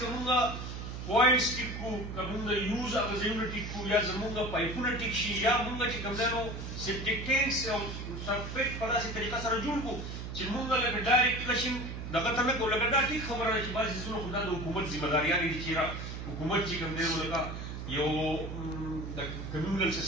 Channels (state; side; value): noise; right; hum, 7 dB below the sound